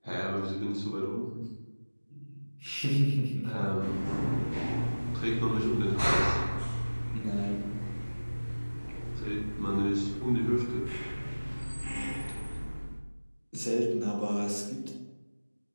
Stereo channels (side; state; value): both; inverted; correlation -1.00